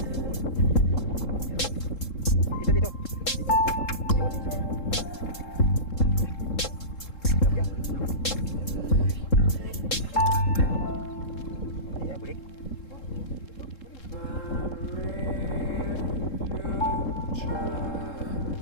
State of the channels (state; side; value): late; right; 3.7 ms